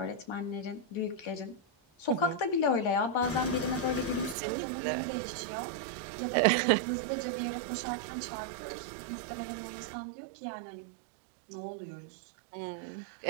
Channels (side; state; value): left; drops out; at 4.4 s